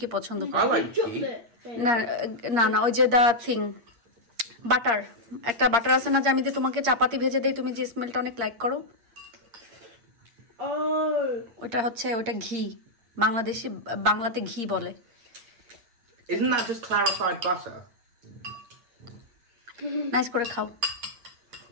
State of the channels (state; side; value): late; left; 8.6 ms